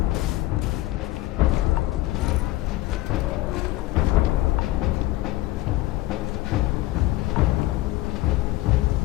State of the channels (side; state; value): right; quieter; 17.5 dB